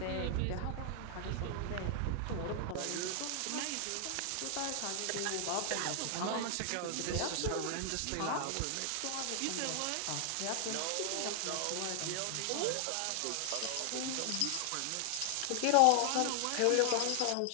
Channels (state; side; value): different; both; correlation 0.00